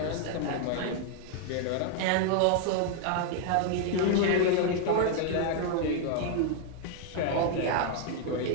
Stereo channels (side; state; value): both; different; correlation 0.00